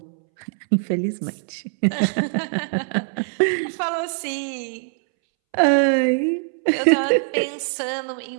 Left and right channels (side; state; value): left; silent; 64 dB below the other